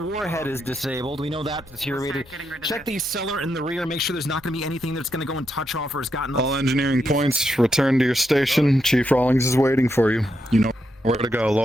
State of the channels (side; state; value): both; normal; correlation 0.82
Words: is disabled. We know that deteriorated. Check the cellar in the rear. Make sure there's not going to be anything that's going to go and touch off or has gotten. All engineering points, return to your station. Chief Rawlings is waiting for you. You know where to go.